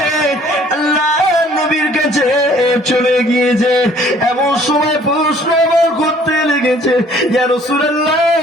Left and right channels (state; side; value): normal; both; correlation 0.57